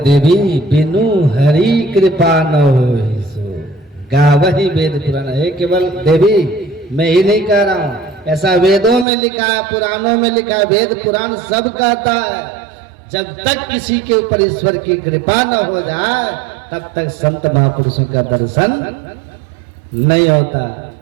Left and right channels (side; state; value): left; drops out; at 9.1 s